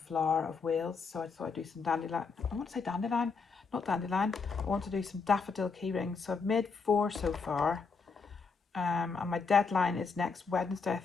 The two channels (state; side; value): quieter; right; 4.9 dB